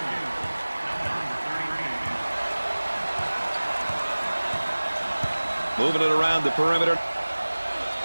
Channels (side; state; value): both; inverted; correlation -1.00